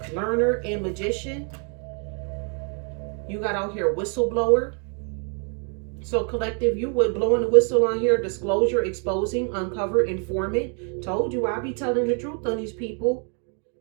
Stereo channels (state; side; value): quieter; left; 39.9 dB